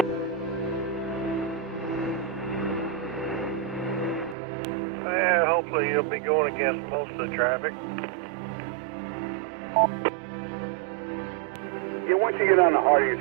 Yeah, hopefully you'll be going against most of the traffic. Yeah, once you get on the Hardy,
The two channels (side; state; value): left; drops out; at 4.4 s